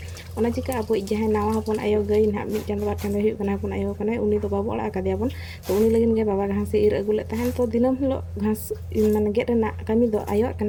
ओना चिका अब जहां नावा हपन आयो गई ना मिट चंद बार चंद हुई कना हपन आयो कना उनी तो बाबू ओड़ा का दियाबन तो उनी लगिन गे बाबा घास इर अगुले तहन तो दिनम हलो घास माने गेट रेना कमी दो आयो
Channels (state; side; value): identical; both; correlation 1.00